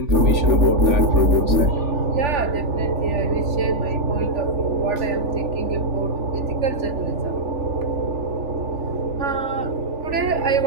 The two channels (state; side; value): late; left; 3.4 ms